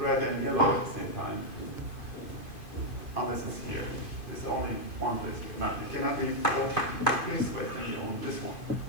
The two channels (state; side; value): late; right; 2.5 ms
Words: and yellow at the same time, unless it's here. It's only one place. It cannot be both places, but it can be on this one.